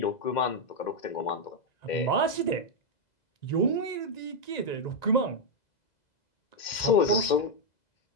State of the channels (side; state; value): right; late; 2.1 ms